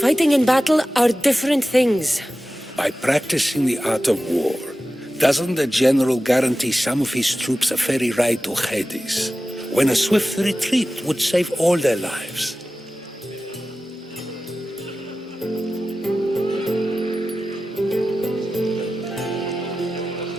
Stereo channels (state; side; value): normal; both; correlation 0.94